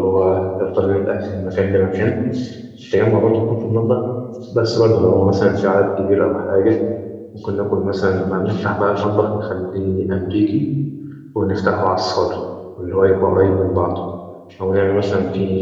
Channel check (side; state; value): both; identical; correlation 1.00